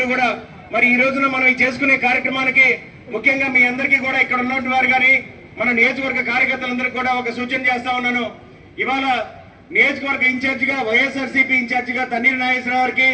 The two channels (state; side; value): identical; both; correlation 1.00